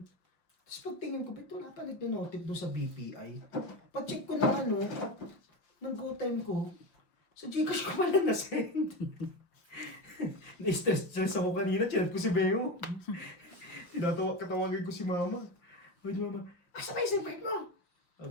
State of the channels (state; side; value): late; right; 5.7 ms